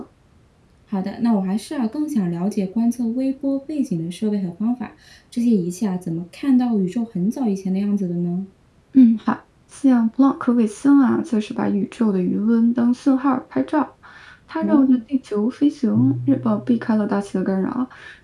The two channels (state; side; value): identical; both; correlation 1.00